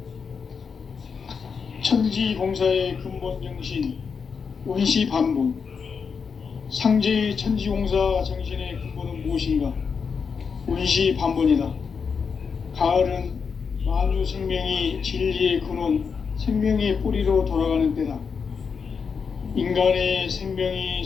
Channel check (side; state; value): right; quieter; 5.9 dB